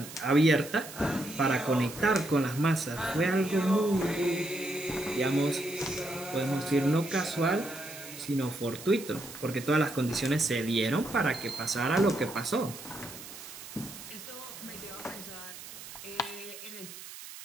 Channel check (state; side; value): noise; right; hiss, 13 dB below the sound